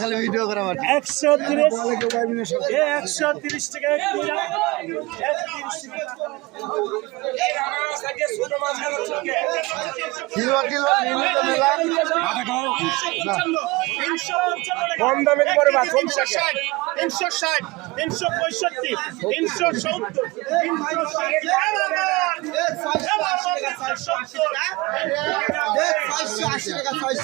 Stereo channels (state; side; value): quieter; left; 23.0 dB